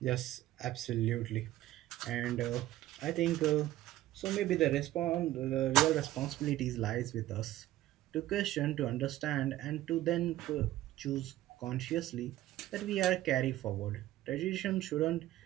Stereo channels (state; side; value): quieter; left; 14.9 dB